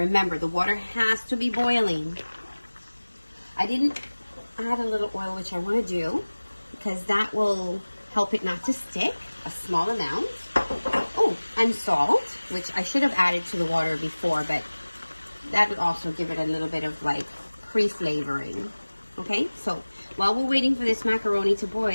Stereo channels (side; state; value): both; inverted; correlation -1.00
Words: the water has to be boiling. I didn't add a little oil, which I want to do, because that will help it not to stick, a small amount. Oh, and salt, which I should have added to the water before, but that would also give it a little bit of like pre-flavoring. Okay, so while we're waiting for this macaroni to